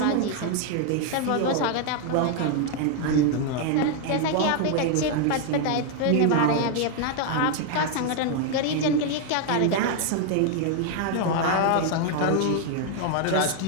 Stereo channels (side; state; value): both; different; correlation 0.00